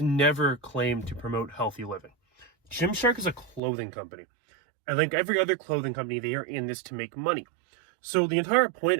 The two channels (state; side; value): drops out; left; at 3.6 s